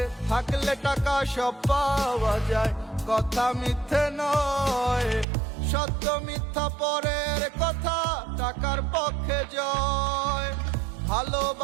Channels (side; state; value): left; drops out; at 5.2 s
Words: থাকলে টাকা সব পাওয়া যায়, কথা মিথ্যে নয়। সত্য মিথ্যা পরের কথা, টাকার পক্ষে জয়।